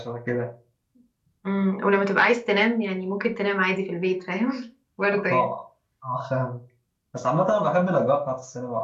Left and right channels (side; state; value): both; identical; correlation 1.00